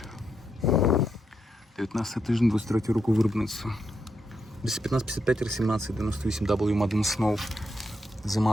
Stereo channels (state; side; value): normal; both; correlation 0.82